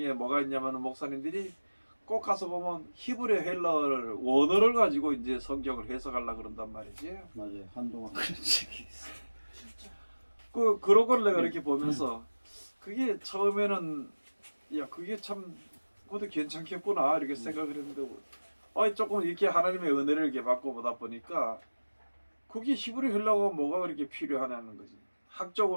뭐가 있냐면 목사님들이 꼭 가서 보면 히브리 헬라어를 원어를 가지고 이제 성경을 해석하려고 그런단 말이지. 맞아요. 한동안 그런 적이 있어. 그런 걸 내가 이렇게 보면서 그게 처음에는 야 그게 참 그것도 괜찮겠구나 이렇게 생각을 했는데 조금 이렇게 하나님의 은혜를 이렇게 받고 보다 보니까 그게 히브리 헬라어가 뭐가 그렇게 필요하냐는 거지.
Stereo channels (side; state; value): both; inverted; correlation -1.00